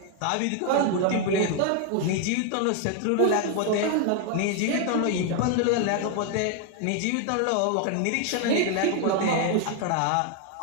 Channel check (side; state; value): both; different; correlation 0.00